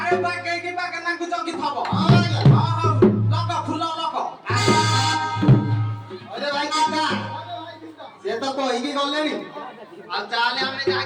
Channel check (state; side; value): identical; both; correlation 1.00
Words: ଆରେ ବାଗେଇକି ବାଗେନାକୁ ଜଗିଥବ। ହଁ ଆଜ୍ଞା। ହଉ ଲଗ ଫୁଲ ଲଗ। ଅରେ ଭାଇ ଚିନ୍ତା ସେ ତ କହିକି ଗଲେଣି। ଆଉ ଚାଲେ ଆମେ ଯାହା